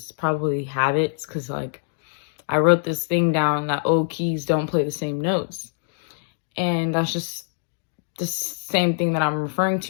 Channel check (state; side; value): silent; right; digital silence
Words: probably habits, because like I wrote this thing down that old keys don't play the same notes, and that's just the same thing that I'm referring